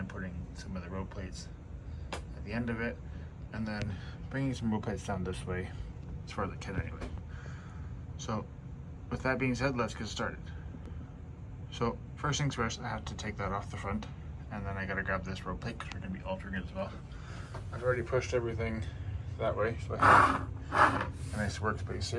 putting some of the road plates at the end of it, and then bringing some road plates down this way as far as I can anyway. So with that being said, let's get started. So first things first, I have to take that off the front, and then I got to grab this road plate because we're going to be altering it as well. I've already pushed everything that way, so I have a nice workspace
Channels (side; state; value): both; identical; correlation 1.00